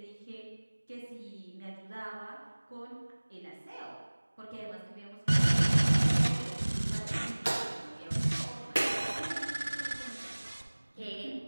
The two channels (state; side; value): inverted; both; correlation -1.00